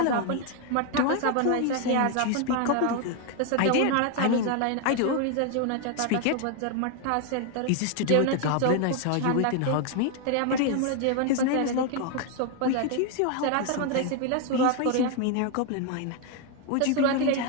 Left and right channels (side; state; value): both; different; correlation 0.01